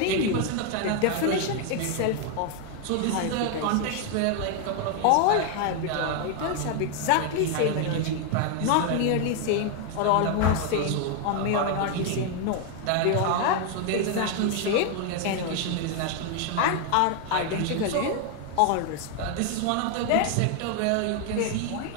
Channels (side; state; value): both; different; correlation 0.01